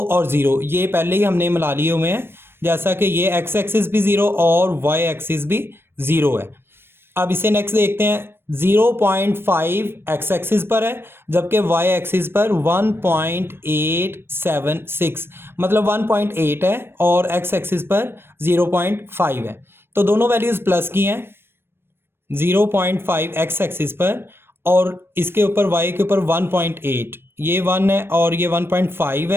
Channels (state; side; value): late; left; 0.11 ms